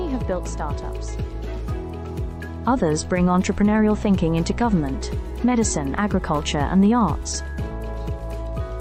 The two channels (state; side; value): identical; both; correlation 1.00